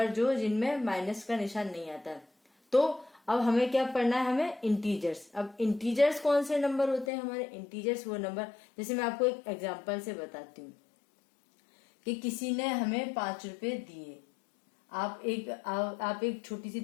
जो जिनमें माइनस का निशान नहीं आता। तो अब हमें क्या पढ़ना है, हमें इंटीजर्स। अब इंटीजर्स कौन से नंबर होते हैं हमारे, इंटीजर्स वो नंबर, जैसे मैं आपको एक एग्जांपल से बताती हूँ कि किसी ने हमें 5 रुपए दिए। आप एक छोटी सी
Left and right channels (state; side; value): drops out; right; at 7.1 s